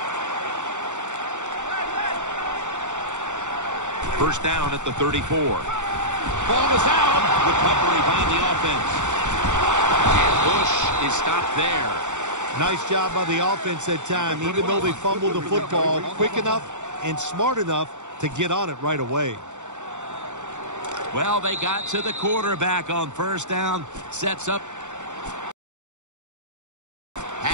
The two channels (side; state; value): left; late; 0.85 ms